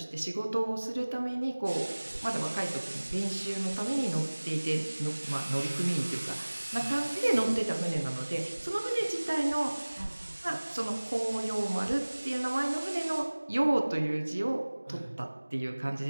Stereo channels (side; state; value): both; inverted; correlation -1.00